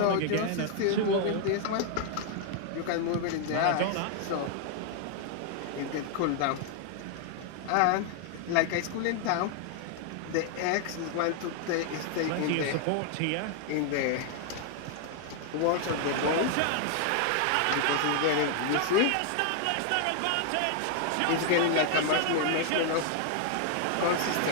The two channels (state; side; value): different; both; correlation 0.00